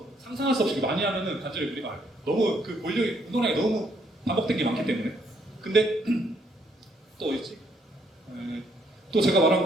상상할 수 없이 많이 하면은 관절에 무리가 가요. 너무 그 볼륨이 운동량이 너무 반복된 게 많기 때문에. 근데 또 있지. 또 제가 말한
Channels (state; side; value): normal; both; correlation 0.70